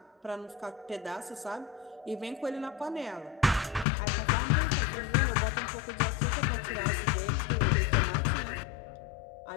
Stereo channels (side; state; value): right; drops out; at 3.9 s